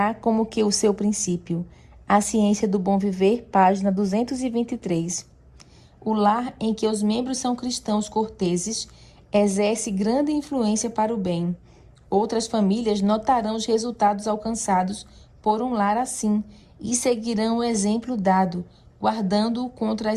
como que o seu princípio. A Ciência do Bom Viver, página 223. O lar em que os membros são cristãos corteses exerce grande influência para o bem. Outras famílias notarão os resultados alcançados por um lar assim e seguirão o exemplo dado, guardando-o contra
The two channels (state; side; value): identical; both; correlation 1.00